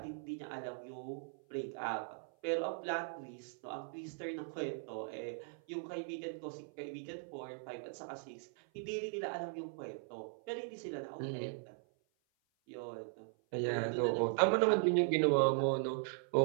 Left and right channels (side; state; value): left; silent; 52 dB below the other